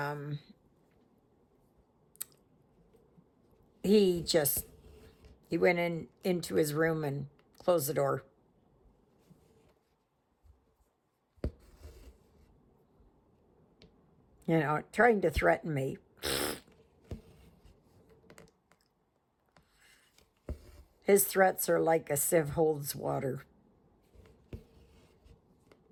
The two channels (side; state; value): both; identical; correlation 1.00